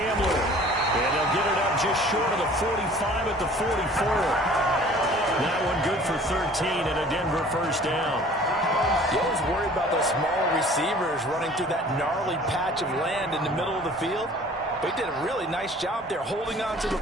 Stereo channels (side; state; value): both; normal; correlation 0.49